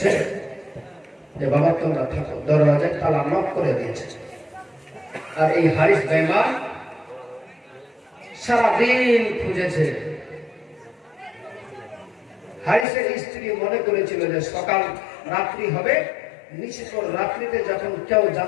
যে বাবা তোমরা থাকো, দরওয়াজায় তালা নক করে দিয়েছে। আর এই হারিস বেঈমান সারাদিন খুঁজেছে। হারিসের স্ত্রী মনে করেছিল যে সকাল রাত্রি হবে, নিশ্চিত রাত্রিতে যখন কেউ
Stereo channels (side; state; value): right; drops out; at 12.9 s